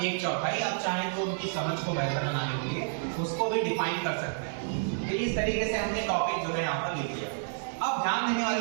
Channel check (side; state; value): left; silent; 58 dB below the other